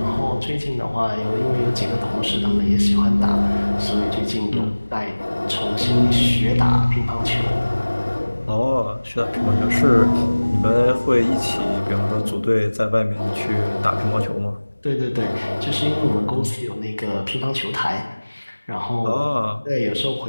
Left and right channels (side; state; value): both; inverted; correlation -1.00